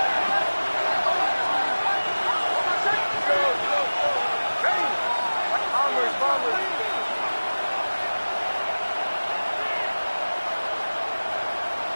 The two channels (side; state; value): both; inverted; correlation -1.00